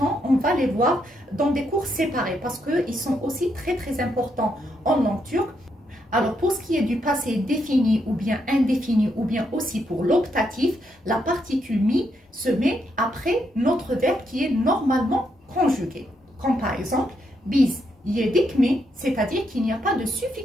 on va les voir dans des cours séparés parce qu'ils sont aussi très très importants en langue turque. Alors pour ce qui est du passé défini ou bien indéfini ou bien aussi pour l'optatif, la particule mi se met après notre verbe qui est normalement conjugué. Comme par exemple, biz yedikme, c'est-à-dire qu'il n'y a pas de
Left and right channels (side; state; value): both; normal; correlation 0.78